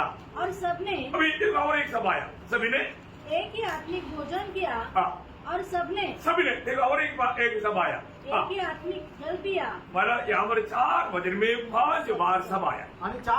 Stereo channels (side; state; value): both; identical; correlation 1.00